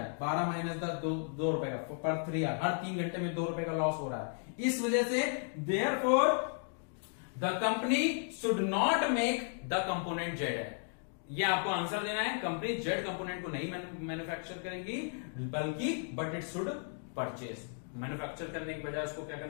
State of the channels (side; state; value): right; silent; 55 dB below the other